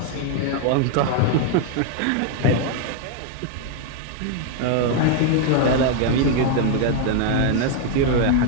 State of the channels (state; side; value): different; both; correlation 0.00